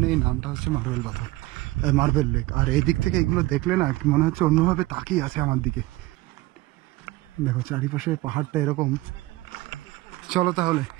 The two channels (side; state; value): left; quieter; 19.3 dB